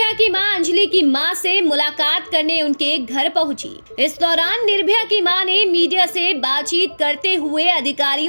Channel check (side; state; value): both; inverted; correlation -1.00